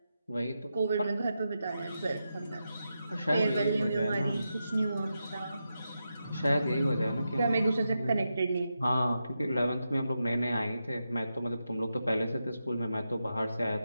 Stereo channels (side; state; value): both; inverted; correlation -0.88